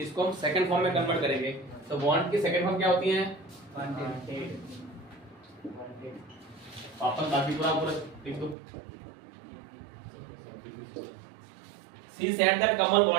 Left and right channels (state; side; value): drops out; left; at 8.6 s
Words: हम सेकंड फॉर्म में कन्वर्ट करेंगे। तो वांट की सेकंड फॉर्म क्या होती है? वापस बाकी पूरा लिख दो। She said that Kamal